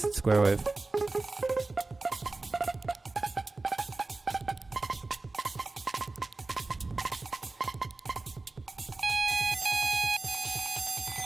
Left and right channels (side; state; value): left; quieter; 3.4 dB